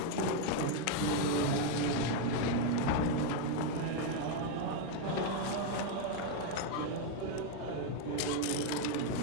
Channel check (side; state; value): both; different; correlation 0.01